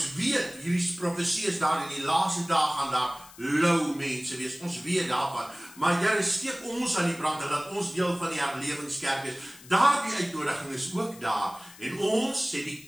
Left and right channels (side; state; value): left; noise; hiss, 20 dB below the sound